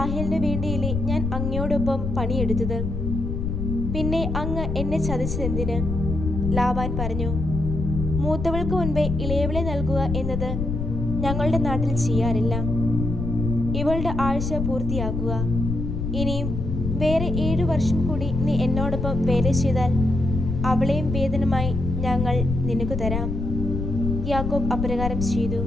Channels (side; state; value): left; noise; rumble, 3 dB below the sound